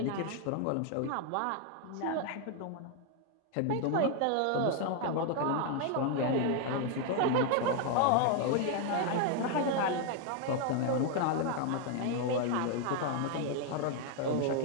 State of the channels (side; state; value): both; different; correlation 0.01